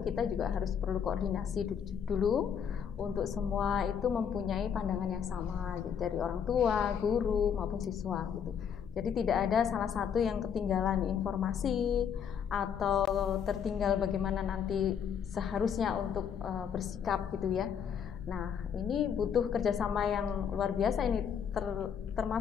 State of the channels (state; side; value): quieter; right; 7.7 dB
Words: kita juga harus perlu koordinasi dulu untuk semua itu mempunyai pandangan yang sama gitu, dari orang tua, guru maupun siswa gitu. Jadi tidak ada salah satu yang ketinggalan informasi atau tertinggal bagaimana nanti seharusnya untuk bersikap gitu ya. Nah ini butuh kerjasama yang luar biasa ini,